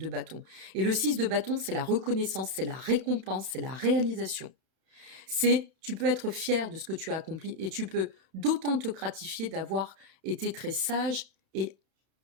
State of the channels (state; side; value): late; left; 31 ms